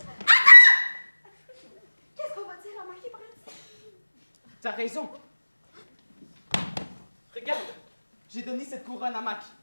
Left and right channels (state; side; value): inverted; both; correlation -1.00